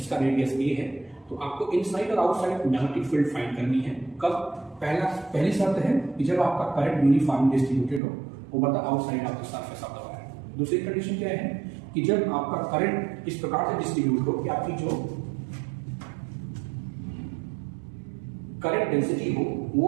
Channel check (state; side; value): drops out; left; at 8.0 s